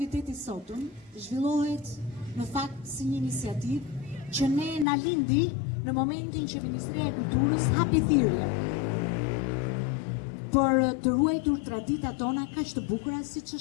sotëm zhvillohet në fakt si një iniciativë që ne na lindi në momentin që Ministria e Kulturës hapi thirrje për të ruajtur traditat tona kaq të bukura siç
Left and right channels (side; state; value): right; drops out; at 4.9 s